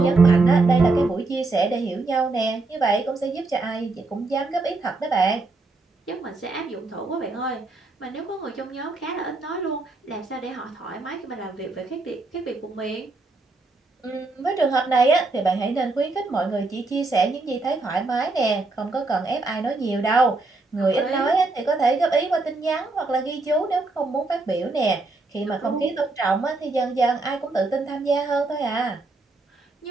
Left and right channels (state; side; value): quieter; left; 3.4 dB